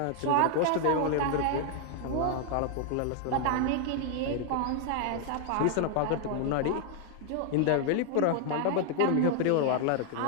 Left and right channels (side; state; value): both; different; correlation 0.00